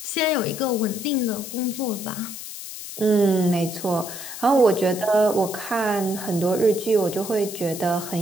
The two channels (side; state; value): left; noise; hiss, 10 dB below the sound